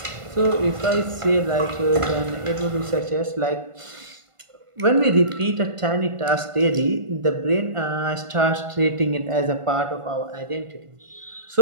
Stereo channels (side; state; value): left; late; 1.5 ms